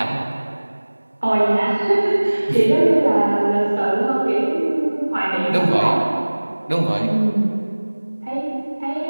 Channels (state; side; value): inverted; both; correlation -1.00